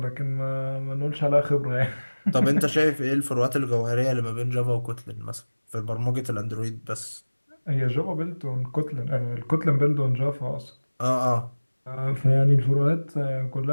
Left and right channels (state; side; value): inverted; both; correlation -1.00